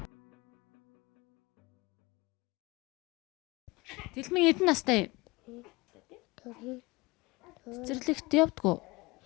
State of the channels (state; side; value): quieter; right; 23.4 dB